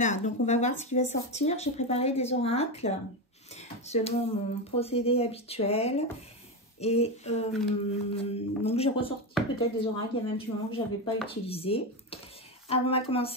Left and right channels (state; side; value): normal; both; correlation 0.14